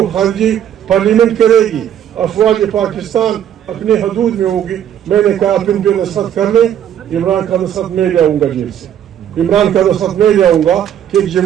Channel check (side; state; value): left; quieter; 10.1 dB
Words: خارجی پارلیمنٹ کرے گی, افواج پاکستان اپنے حدود میں ہوگی. میں نے کہا آپ ان پہ نصرت کر لیں, عمران کا نصرت میں جاؤں گا جیل سے, عمران کا نصرت میں جاؤں گا کہ